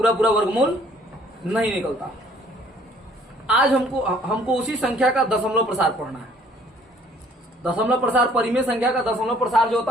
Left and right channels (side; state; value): both; normal; correlation 0.59